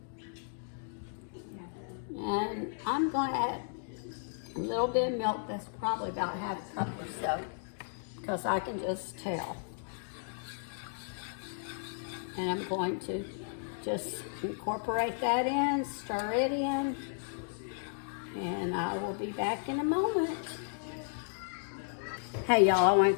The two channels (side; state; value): right; silent; digital silence